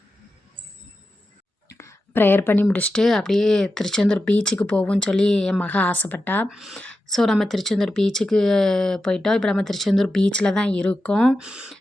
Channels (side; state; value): both; normal; correlation 0.91